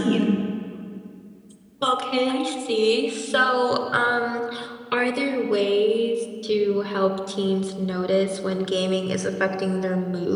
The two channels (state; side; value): identical; both; correlation 1.00